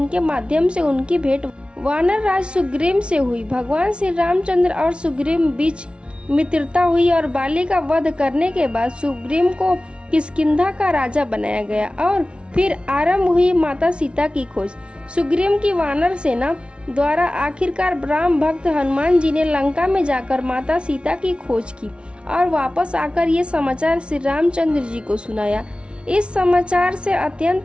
माध्यम से उनकी भेंट वानर राज सुग्रीव से हुई। भगवान श्री रामचंद्र और सुग्रीव बीच मित्रता हुई और बाली का वध करने के बाद सुग्रीव को किष्किंधा का राजा बनाया गया और फिर आरंभ हुई माता सीता की खोज। सुग्रीव की वानर सेना द्वारा आखिरकार राम भक्त हनुमान जी ने लंका में जाकर माता सीता की खोज की और वापस आकर ये समाचार श्री रामचंद्र जी को सुनाया। इस समाचार से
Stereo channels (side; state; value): left; late; 0.058 ms